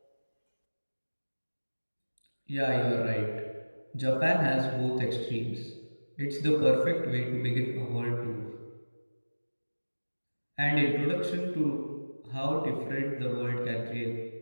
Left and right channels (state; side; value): inverted; both; correlation -1.00